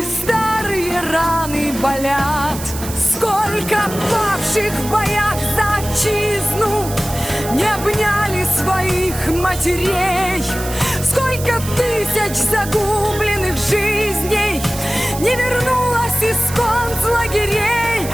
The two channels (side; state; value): right; noise; hiss, 11 dB below the sound